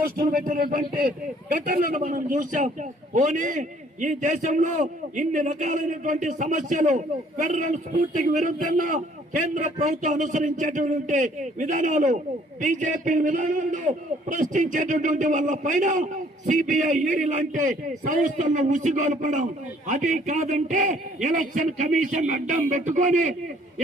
పెట్టినటువంటి ఘటనలను మనం చూసాం. పోనీ ఈ దేశంలో ఇన్ని రకాలైనటువంటి సమస్యలు ఫెడరల్ స్ఫూర్తికి విరుద్ధంగా కేంద్ర ప్రభుత్వం అనుసరించేటటువంటి విధానాలు బీజేపీ విధానాలను ప్రశ్నించేటటువంటి వాళ్ళ పైన సిబిఐ ఈడీ లాంటి సంస్థలను ఉసిగొల్పడం, అది కాదంటే ఎలక్షన్ కమిషన్ అడ్డం పెట్టుకొని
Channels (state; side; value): normal; both; correlation 0.60